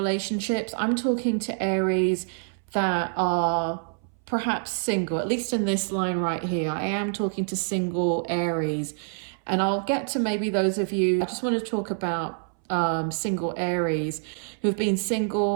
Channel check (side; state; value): left; silent; 61 dB below the other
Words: I'm talking to Aries that are perhaps single, at least in this line right here. I am talking to single Aries. And I'll get to maybe those of you, I just want to talk about single Aries who've been